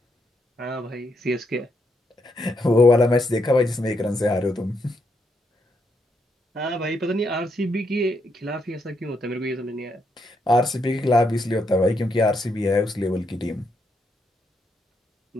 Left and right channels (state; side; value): normal; both; correlation 0.78